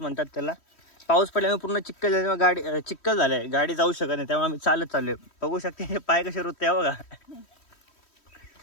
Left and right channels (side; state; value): right; late; 3.1 ms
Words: म्हणतात त्याला. पाऊस पडल्यामुळे पूर्ण चिखल झाल्यामुळे गाडी चिखल झालंय, गाडी जाऊ शकत नाही. त्यामुळे आम्ही चालत चाललोय. बघू शकते हे पाय कसे रुतते बघा.